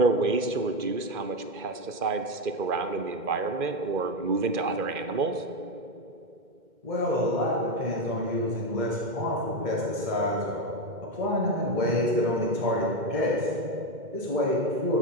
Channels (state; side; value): late; left; 2.1 ms